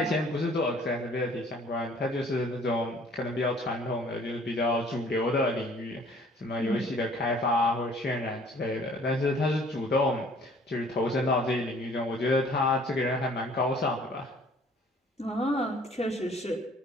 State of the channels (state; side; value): normal; both; correlation 0.55